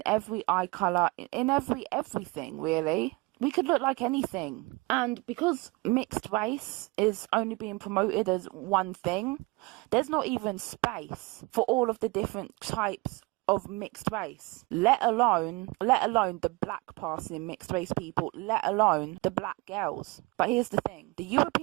every eye colour, in everything, really. We could look like anything. And because mixed race is only being promoted as one thing, there's not even space for all of the different types of mixed race, let alone the black passing mixed race people, let alone the black girls. But here's the thing, the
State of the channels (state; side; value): quieter; left; 24.9 dB